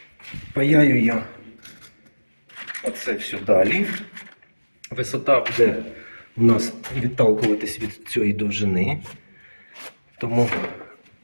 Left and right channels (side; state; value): both; inverted; correlation -1.00